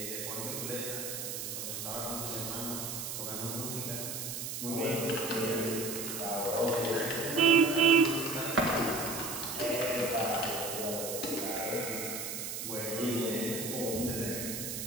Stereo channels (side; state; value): right; noise; hiss, 5 dB below the sound